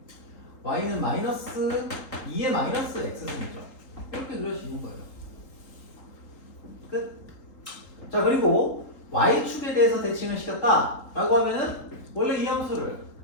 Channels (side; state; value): right; late; 3.8 ms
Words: y는 마이너스 2의 마이너스 x승이죠. 이렇게 그릴 수 있는 거예요. 끝. 자, 그리고 y축에 대해서 대칭을 시켰다 라고 하면은 원래 이 함수를